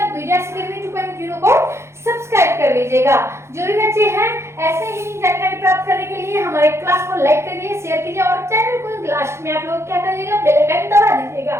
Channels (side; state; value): left; late; 0.13 ms